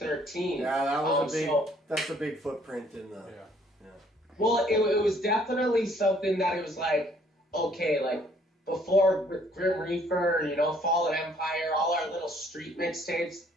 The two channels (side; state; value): both; normal; correlation 0.62